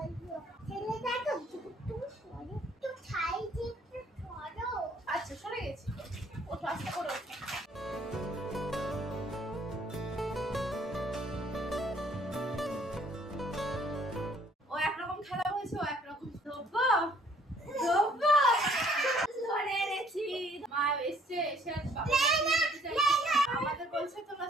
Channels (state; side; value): normal; both; correlation 0.61